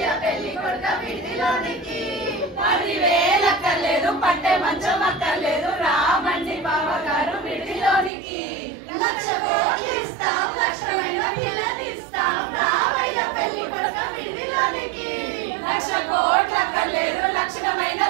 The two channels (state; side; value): drops out; left; at 8.1 s